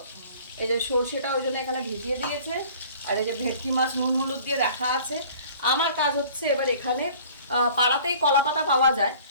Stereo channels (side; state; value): both; inverted; correlation -0.50